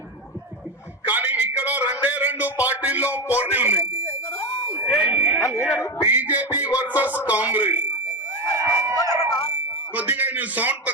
కానీ ఇక్కడ 2 పార్టీల్లో పోటీ ఉన్నాయి. BJP versus Congress. కొద్దిగా నేను సౌండ్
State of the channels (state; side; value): normal; both; correlation 0.15